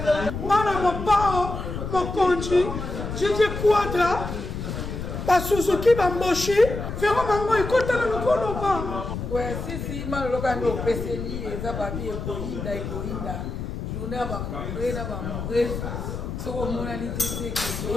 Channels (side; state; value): left; noise; rumble, 6 dB below the sound